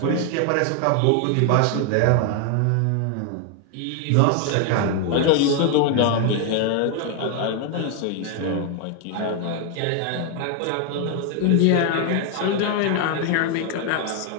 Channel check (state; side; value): different; both; correlation 0.00